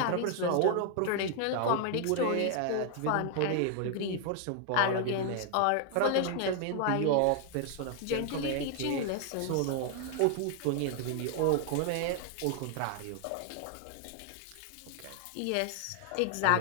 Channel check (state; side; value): different; both; correlation 0.00